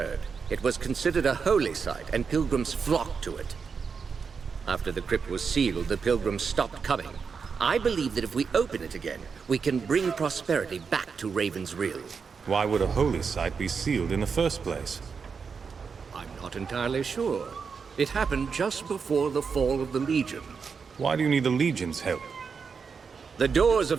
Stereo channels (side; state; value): left; quieter; 5.7 dB